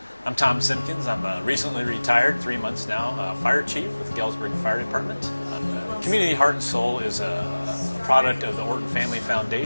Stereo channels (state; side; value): inverted; both; correlation -1.00